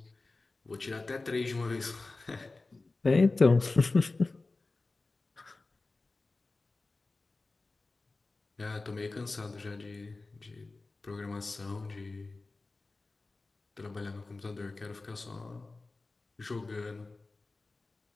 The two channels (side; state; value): right; quieter; 3.4 dB